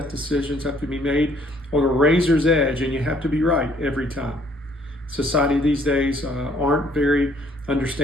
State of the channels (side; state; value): both; normal; correlation 0.62